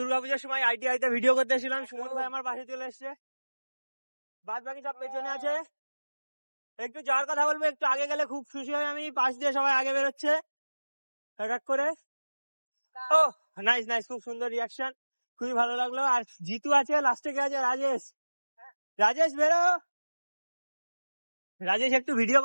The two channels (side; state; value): both; inverted; correlation -1.00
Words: সময় ITI তে ভিডিও করতে এসেছিলাম। সুমন ভাই আমার পাশে চলে এসছে, বাদ বাকি সব পেছনে আছে। একটু যাওয়ার কথা বলবো, একটু আগে গেলে খুব খুশি হয় আমি, পাশ দিয়ে সবাই আগে বেরোচ্ছে এক করে। ও নাইস নাইস, খুব সুন্দর রিয়াকশন, খুবই ভালো লাগলো। আর জিতু আছে, লাস্টে কে আছে? রাজেশ বেরো। রাজেশ একটু ভিডিও